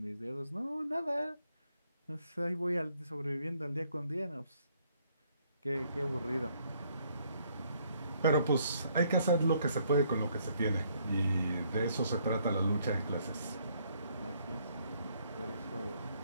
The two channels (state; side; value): inverted; both; correlation -0.68